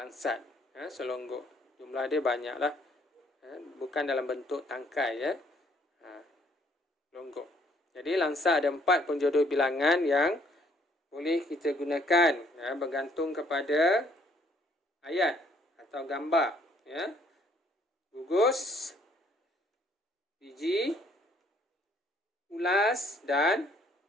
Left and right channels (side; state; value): both; normal; correlation 0.64